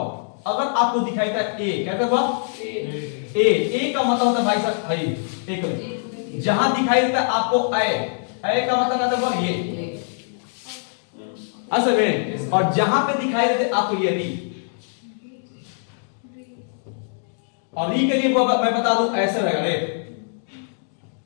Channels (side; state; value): right; silent; digital silence